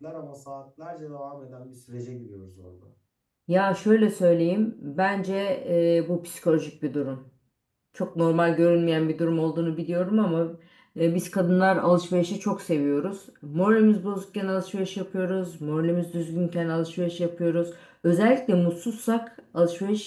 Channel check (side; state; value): both; identical; correlation 1.00